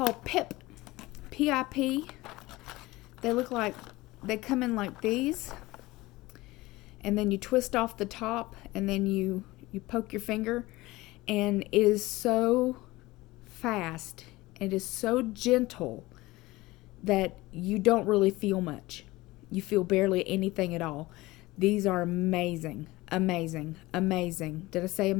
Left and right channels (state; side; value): quieter; right; 19.8 dB